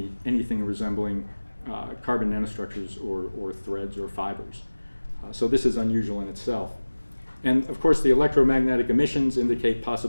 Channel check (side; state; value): both; inverted; correlation -1.00